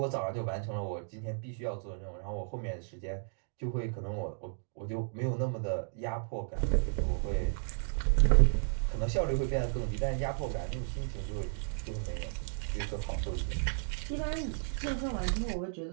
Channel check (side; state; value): left; silent; digital silence